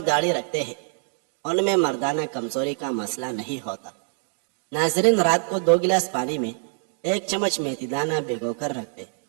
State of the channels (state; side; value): silent; left; digital silence